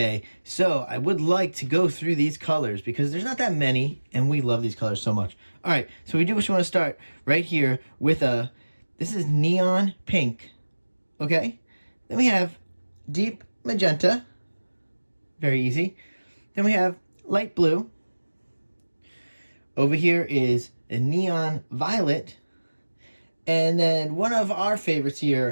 so I would like to go through these colors because there's not that many, and we love these colors so much. All right, so we do just want to start right here with this is neon pink, okay? Then we have deep magenta, very easy. Then we have light blue. Over here is a neon violet. And then one of our favorites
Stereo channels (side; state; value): both; inverted; correlation -1.00